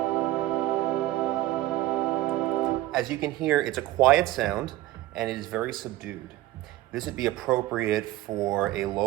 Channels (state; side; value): quieter; left; 16.3 dB